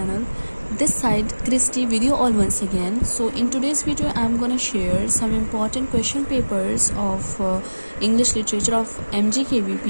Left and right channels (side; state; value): both; inverted; correlation -1.00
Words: This side Christy video all once again. So in today's video I'm gonna share some important question papers of English literature of